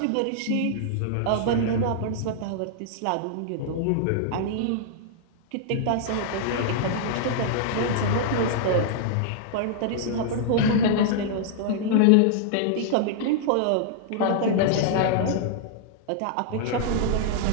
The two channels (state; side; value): different; both; correlation -0.01